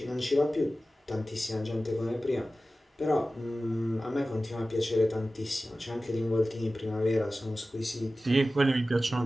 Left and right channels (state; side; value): normal; both; correlation 0.96